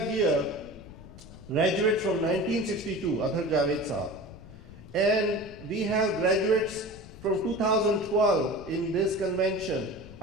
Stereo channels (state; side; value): noise; left; rumble, 17 dB below the sound